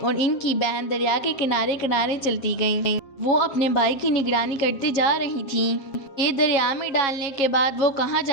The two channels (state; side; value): late; right; 7.3 ms